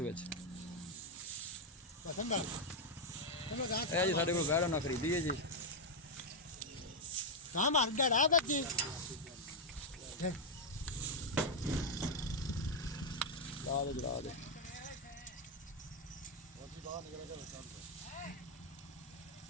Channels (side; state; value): both; normal; correlation 0.00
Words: पसंद आ ए जी साडे कोल वैड ना खरीदी है जी। कहां मार डरा बच्ची ला दे